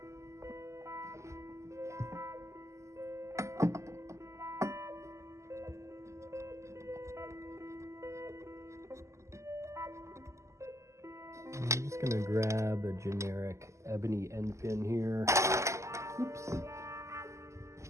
I'm just gonna grab a generic ebony end pin here. Oops.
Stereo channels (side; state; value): left; late; 0.14 ms